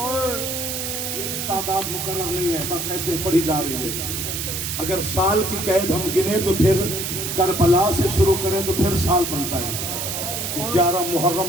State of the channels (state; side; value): noise; right; hiss, 3 dB below the sound